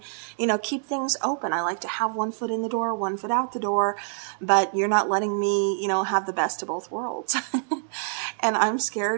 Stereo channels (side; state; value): left; silent; digital silence